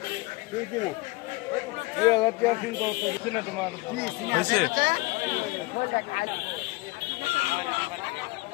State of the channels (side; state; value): right; quieter; 23.1 dB